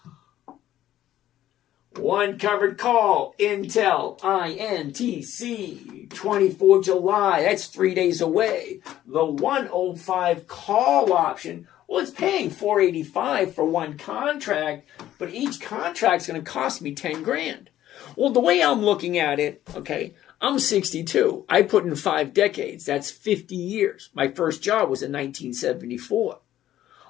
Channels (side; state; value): right; quieter; 12.8 dB